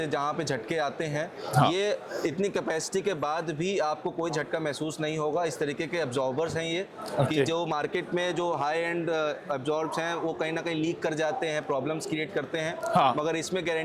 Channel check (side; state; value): both; identical; correlation 1.00